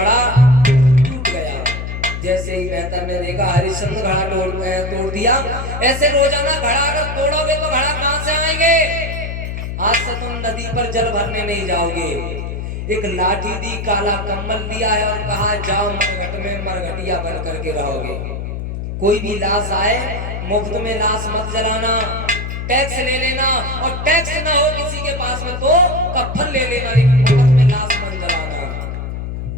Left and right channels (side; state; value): left; noise; hum, 5 dB below the sound